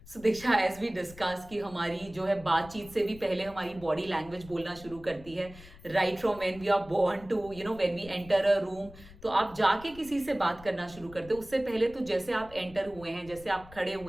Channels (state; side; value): noise; left; rumble, 19 dB below the sound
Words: सो दीक्षा, एज वी डिस्कस कि हमारी जो है बातचीत से भी पहले हमारी बॉडी लैंग्वेज बोलना शुरू करती है, right from when we are born to when we enter a room. तो आप जाके किसी से बात करना शुरू करते हो, उससे पहले तो जैसे आप एंटर हुए हैं, जैसे आप खड़े